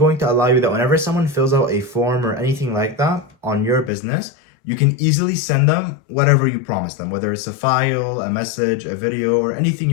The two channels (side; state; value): right; drops out; at 3.9 s